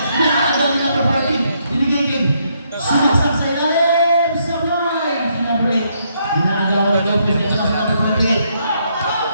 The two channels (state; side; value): inverted; both; correlation -0.74